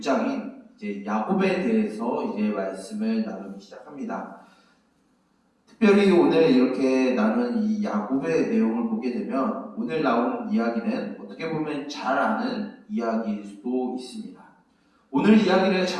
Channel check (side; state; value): both; identical; correlation 1.00